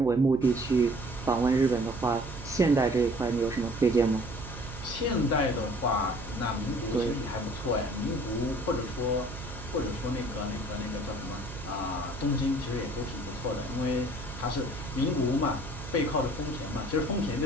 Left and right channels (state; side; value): noise; right; hum, 12 dB below the sound